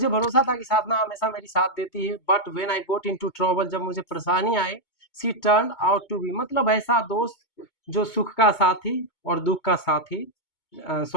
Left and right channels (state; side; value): late; right; 2.2 ms